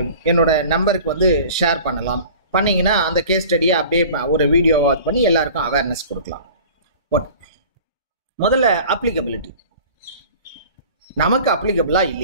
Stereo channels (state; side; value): inverted; both; correlation -0.43